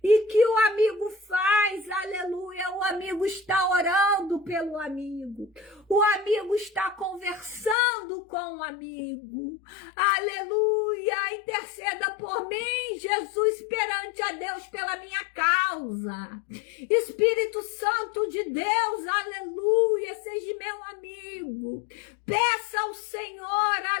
E que o amigo faz, aleluia, o amigo está orando pelo amigo. O amigo está conversando com o amigo. Aleluia, interceda por mim, Jesus, perante a Deus pela minha causa. Espírito Santo de Deus, aleluia, seja meu amigo. Peça ao Senhor,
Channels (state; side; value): drops out; right; at 7.8 s